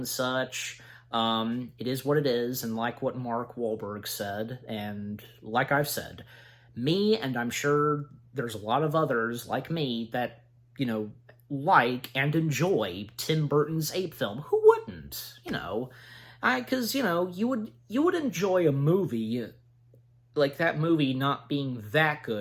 such. It is what it is, and like what Mark Wahlberg said, and like I've said, me, and I'm sure there's a lot of others like me that, like and enjoy Tim Burton's Ape film. Who wouldn't? Because, you would enjoy a movie like that movie not being that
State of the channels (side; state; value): both; identical; correlation 1.00